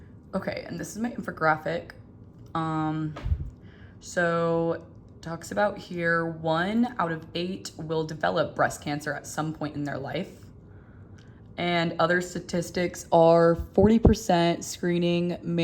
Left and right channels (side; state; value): both; identical; correlation 1.00